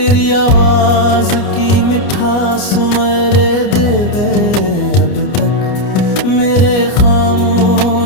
आवाज की मिठास मेरे देवे अब तक मेरे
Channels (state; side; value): late; right; 29 ms